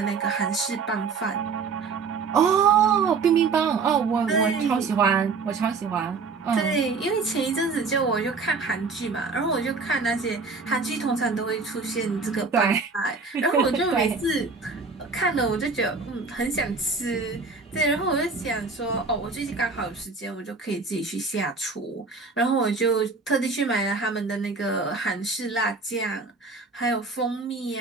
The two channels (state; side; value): quieter; left; 4.5 dB